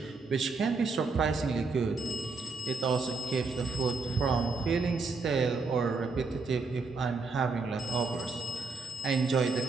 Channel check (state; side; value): quieter; left; 4.2 dB